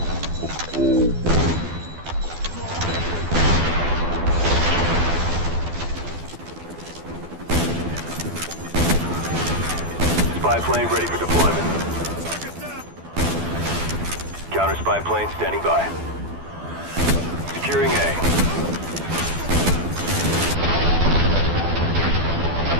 Spy plane ready for deployment. Counter spy plane standing by. Securing A.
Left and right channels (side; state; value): left; late; 12 ms